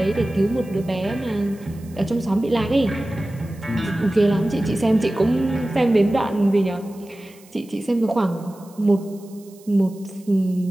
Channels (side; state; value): right; noise; hiss, 26 dB below the sound